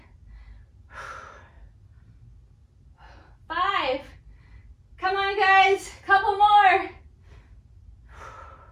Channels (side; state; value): both; identical; correlation 1.00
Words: 5, come on guys, couple more.